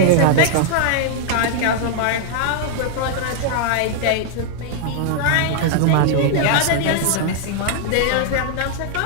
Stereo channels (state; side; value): different; both; correlation 0.00